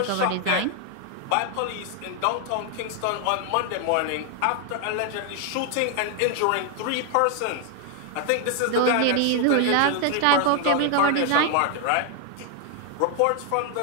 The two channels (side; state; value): both; different; correlation 0.00